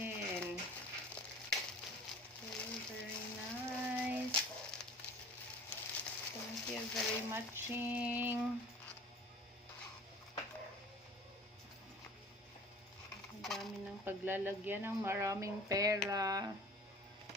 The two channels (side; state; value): both; normal; correlation 0.45